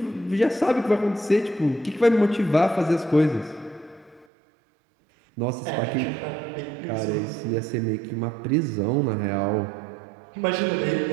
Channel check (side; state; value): left; drops out; at 4.2 s